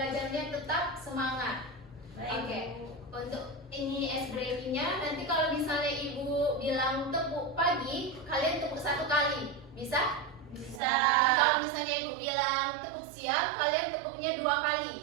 tetap semangat. Baik, Oke. Bu. Untuk ini ice breakingnya, nanti kalau misalnya ibu bilang tepuk pagi, kalian tepuk 1 kali, bisa? Bisa. Kalau misalnya ibu bilang tepuk siang, kalian tepuknya 2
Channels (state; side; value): drops out; left; at 10.8 s